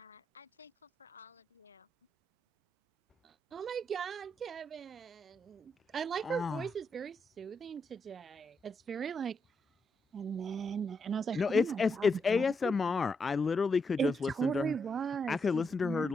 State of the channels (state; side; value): normal; both; correlation 0.82